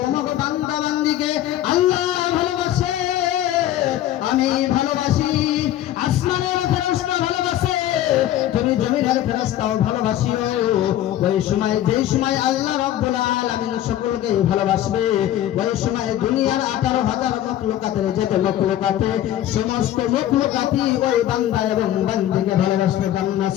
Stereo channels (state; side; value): quieter; right; 12.6 dB